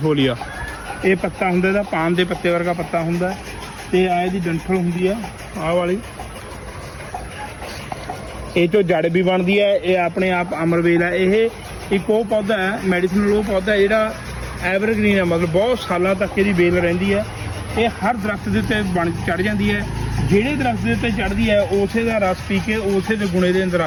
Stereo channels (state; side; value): identical; both; correlation 1.00